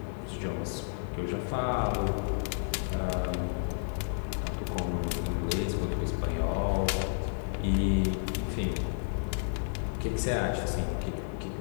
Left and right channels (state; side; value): silent; right; 57 dB below the other